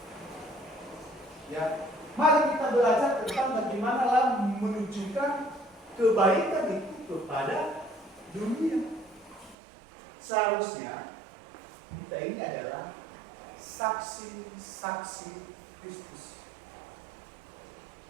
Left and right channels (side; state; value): left; drops out; at 9.6 s